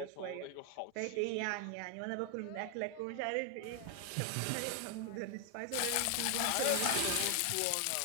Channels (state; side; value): different; both; correlation 0.00